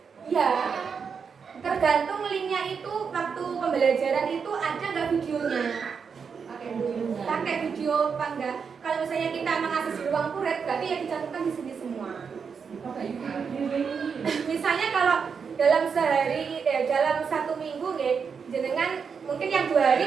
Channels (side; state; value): left; quieter; 6.1 dB